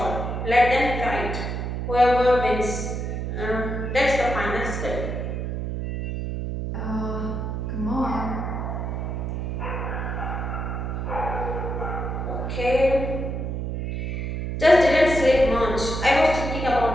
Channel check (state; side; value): noise; right; hum, 3 dB below the sound